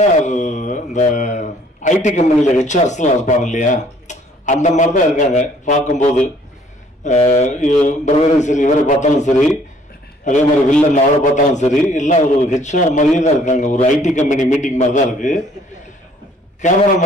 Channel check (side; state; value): both; normal; correlation 0.60